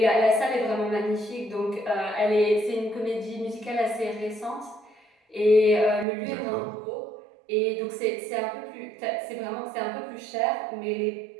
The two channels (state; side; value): drops out; left; at 6.1 s